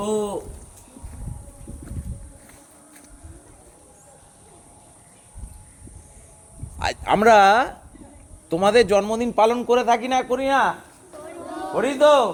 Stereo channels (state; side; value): identical; both; correlation 1.00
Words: আমরা তোমাদের জন্মদিন পালন করে থাকি না, করি না? করি তো।